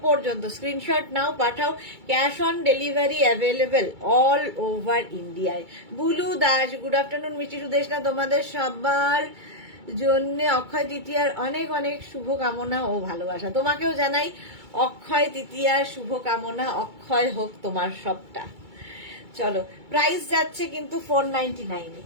পর্যন্ত স্ক্রিনশট নাও, পাঠাও, cash on delivery available all over ইন্ডিয়ায়। বুলু দাস, গুড আফটারনুন মিষ্টি সুদেশনা, তোমাদের সবার জন্য অক্ষয় তৃতীয়ার অনেক অনেক শুভকামনা ও ভালোবাসা। তোমাকেও জানাই অক্ষয় তৃতীয়ার শুভকামনা, অক্ষয় হোক তোমার সবটা। চলো, প্রাইস যাচ্ছে কিন্তু 499,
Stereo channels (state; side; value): late; left; 2.3 ms